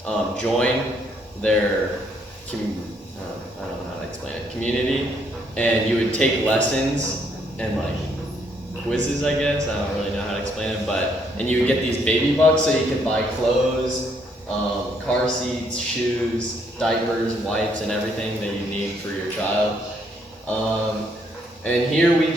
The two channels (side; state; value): both; normal; correlation 0.70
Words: join their, I don't know how to explain it, community, and you would take lessons and like quizzes, I guess. I don't really know how to explain it, and you would get these baby bucks so you could buy clothes, car seats, shoes, diapers, wipes, and everything that you need for your child. And here